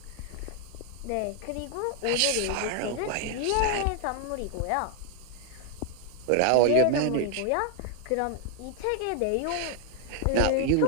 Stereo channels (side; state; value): both; different; correlation 0.00